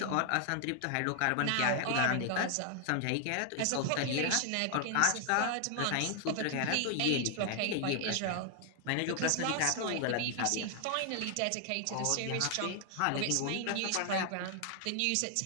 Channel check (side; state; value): both; different; correlation 0.00